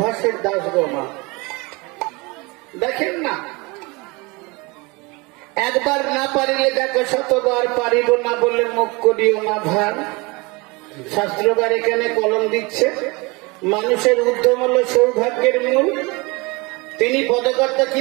দাস গো মা। দেখেন না, একবার না পারিলে দেখো শতবার পারিব না বলে মুখ করিও না ভার। শাস্ত্রকার এখানে কলম দিচ্ছে, মানুষের উদ্যম হলো সৌভাগ্যের মূল। তিনি পদকর্তা কি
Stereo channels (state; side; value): quieter; left; 26.2 dB